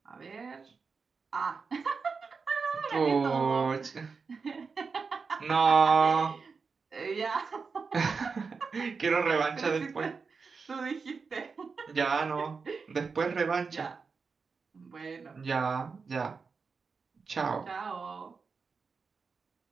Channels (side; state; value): left; quieter; 5.0 dB